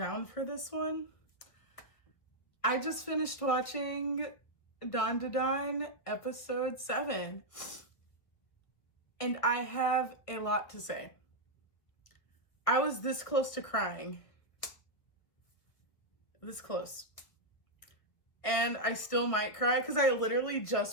for this one. I just finished watching Dandadan episode 7, and I have a lot to say. I was this close to crying. This close. And I still might cry because I literally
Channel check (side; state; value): right; late; 1.9 ms